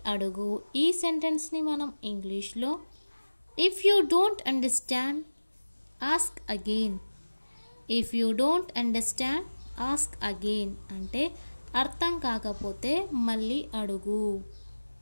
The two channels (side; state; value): both; inverted; correlation -1.00